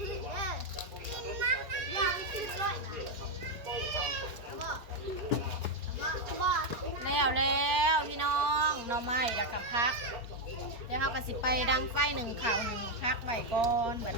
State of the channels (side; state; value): left; late; 4.4 ms